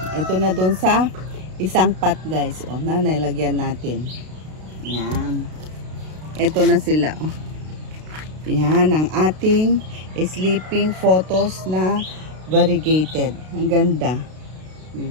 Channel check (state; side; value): late; left; 32 ms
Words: Ito na doon sa isang pot, guys. O, nalagyan natin. Yan. Ito na sila. O. Yan ang ating sleeping photos na variegated. Ang ganda.